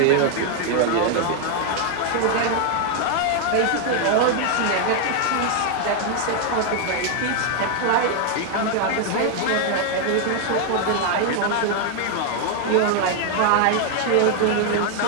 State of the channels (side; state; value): both; different; correlation 0.00